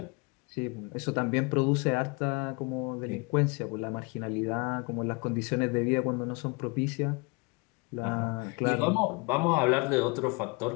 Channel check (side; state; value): right; quieter; 29.4 dB